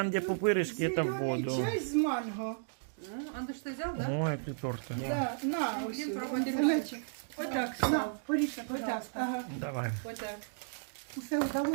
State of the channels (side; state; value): left; silent; digital silence